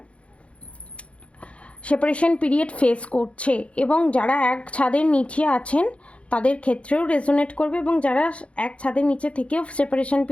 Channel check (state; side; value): late; right; 0.061 ms